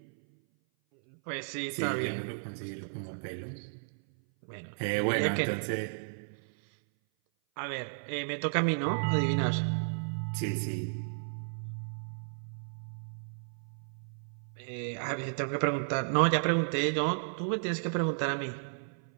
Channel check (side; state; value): left; silent; 56 dB below the other